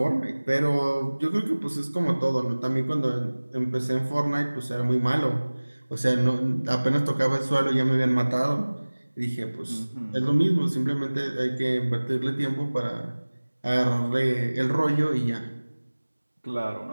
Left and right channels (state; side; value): inverted; both; correlation -1.00